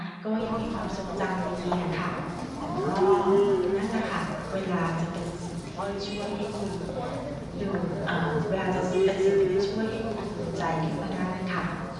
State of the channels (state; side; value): identical; both; correlation 1.00